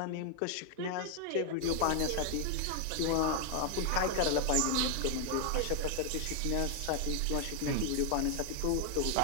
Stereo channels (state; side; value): different; both; correlation 0.00